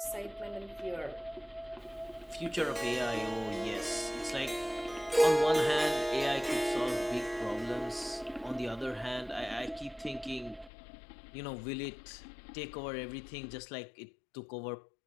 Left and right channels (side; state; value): right; drops out; at 10.7 s